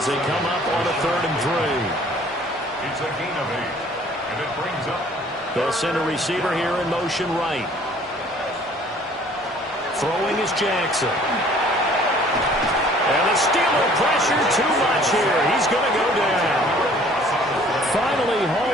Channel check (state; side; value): normal; both; correlation 0.55